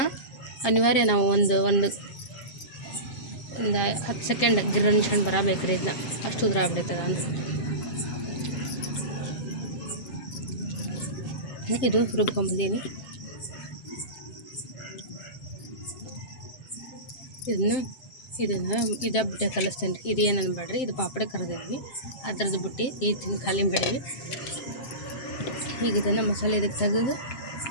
ಅನಿವಾರ್ಯ ನಾವು ಒಂದು 10 ಸೆಕೆಂಡ್ ಗಿರ್ರನ್ಸ್ಕೊಂಡು ಬರಬೇಕ್ರಿ. ಇದನ್ನ ಅಷ್ಟು ಉದ್ರ ಆಗ್ಬಿಡ್ತದ ಅಂತ. ಇದು ರುಬ್ಕೊಂಬಂದೀನಿ. ಇದ ಬುಟ್ಟೆ ಕಲಿಸ್ತೇನೆ ರೀ. ಇದು ಏನು ಅನ್ಬೇಡ್ರಿ. ಇದು ಪಾಪಡೆ ಕರೆದಿದ್ವಿ. ಅದ್ರದ್ದು ಬುಟ್ಟಿ ಈ ತಿಂದು ಖಾಲಿ ಮಾಡಿದ್ವಿ. ಈಗ ಇದನ್ನು ಮಸಾಲೆ ಇದಕ್ಕೆ ತೆಗೆದು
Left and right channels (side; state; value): right; late; 7.6 ms